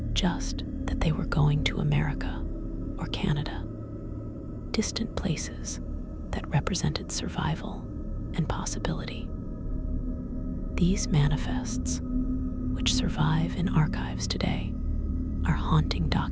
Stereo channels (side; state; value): both; identical; correlation 1.00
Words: just that they were going to America or Canada, distant places that represented survival and possibility. These manifests, which survive in archives today, are haunting